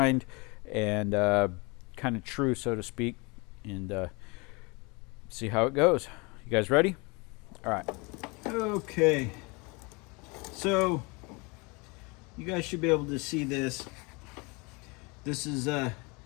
and kind of true, so to speak, and see how it goes. You guys ready? All right. Okay. So you guys should be able to see this. This is the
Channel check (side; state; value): right; quieter; 28.1 dB